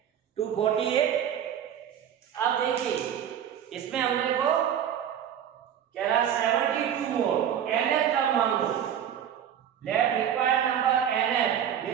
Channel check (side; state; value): left; quieter; 9.4 dB